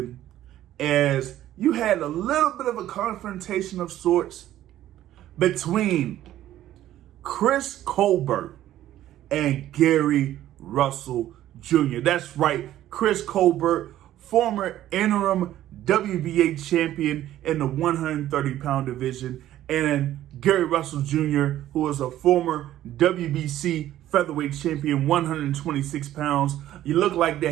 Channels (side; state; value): left; quieter; 13.1 dB